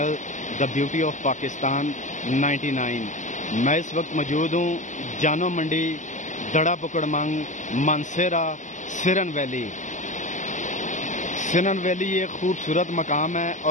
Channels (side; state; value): right; late; 0.36 ms